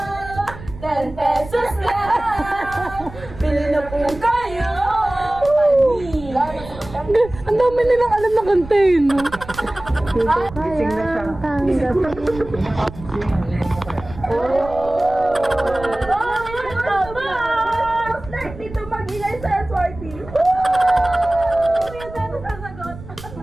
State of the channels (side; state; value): right; noise; rumble, 15 dB below the sound